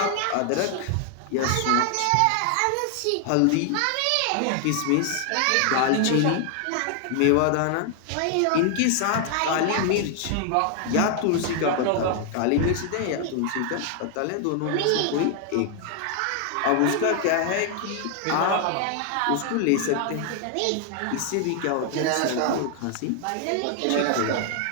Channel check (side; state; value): both; different; correlation 0.00